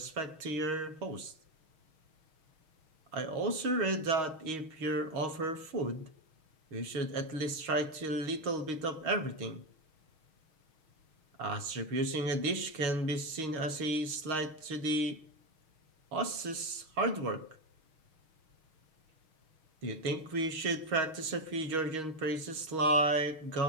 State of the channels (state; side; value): late; left; 6.4 ms